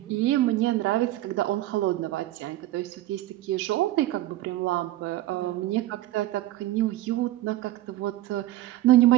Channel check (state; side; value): quieter; left; 15.6 dB